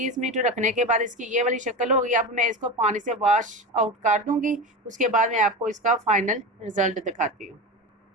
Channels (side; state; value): both; normal; correlation 0.24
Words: मिनट रखने के बाद इसकी ये वाली शक्ल होगी। अब मैं इसको पानी से वॉश आउट कर दूंगी, उसके बाद मैं आपको इसका फाइनल रिजल्ट दिखाती हूँ।